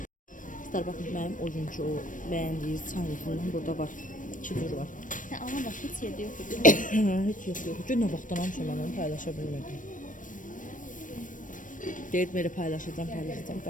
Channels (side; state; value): right; late; 0.38 ms